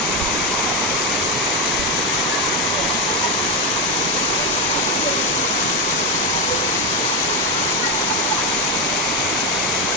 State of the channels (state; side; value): normal; both; correlation 0.09